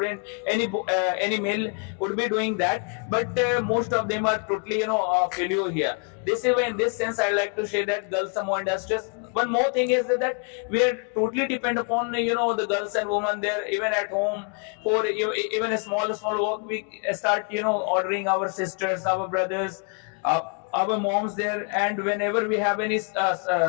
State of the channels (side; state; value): right; quieter; 38.1 dB